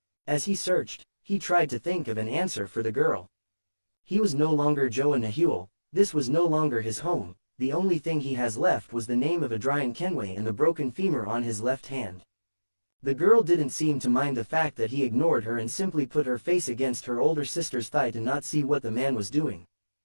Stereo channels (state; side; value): inverted; both; correlation -1.00